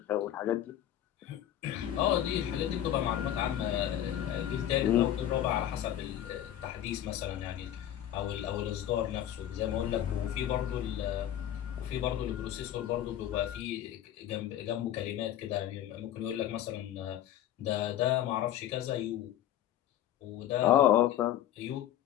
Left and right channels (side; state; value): right; quieter; 11.6 dB